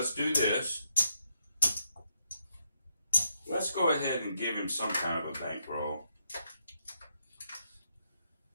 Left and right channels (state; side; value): inverted; both; correlation -0.79